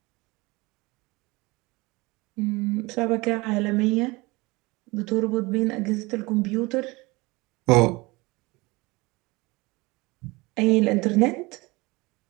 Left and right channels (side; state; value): left; quieter; 23.6 dB